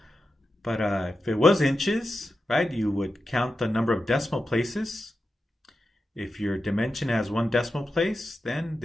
But if it was inches, right, you would count the number of decimal places. If your dimension has 1 decimal place, then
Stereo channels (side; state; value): both; normal; correlation 0.90